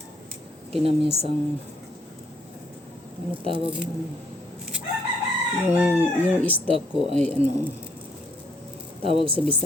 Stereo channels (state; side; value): normal; both; correlation 0.69